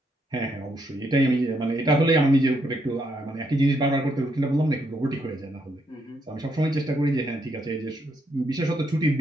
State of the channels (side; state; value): both; normal; correlation 0.76